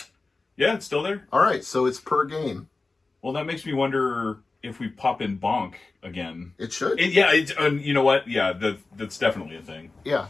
Yeah, it's still there. All right, so it's per game. Well, that makes me wonder if we pop in bonk again. It should. Yeah, you know what? Yeah, that's definitely a thing. Yeah.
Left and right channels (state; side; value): quieter; right; 3.6 dB